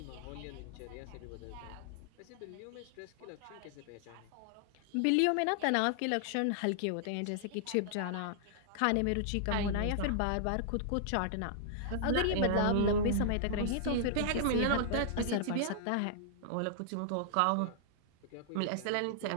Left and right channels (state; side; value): different; both; correlation -0.01